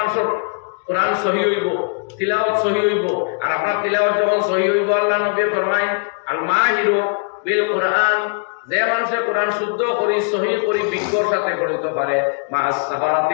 কোরআন সহি হইব তিলাওয়াত সহি হইব আর আপনার তিলাওয়াত যখন সহি হইব আল্লাহ নবী ফরমায় আল মাহিরু বিল কোরআন যে মানুষে কোরআন শুদ্ধ করি সহি করি বিজ্ঞর সাথে পড়িতে পারে মাস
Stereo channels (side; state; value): right; quieter; 38.0 dB